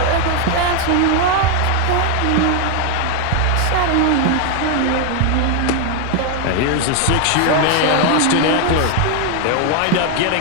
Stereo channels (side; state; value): both; different; correlation 0.01